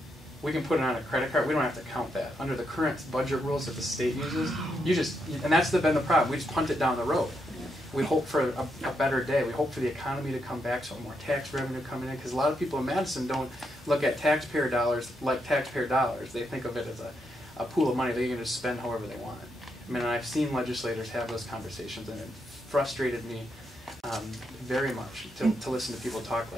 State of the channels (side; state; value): both; normal; correlation 0.81